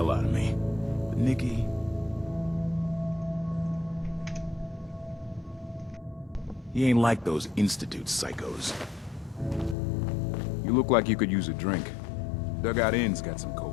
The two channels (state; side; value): drops out; right; at 9.8 s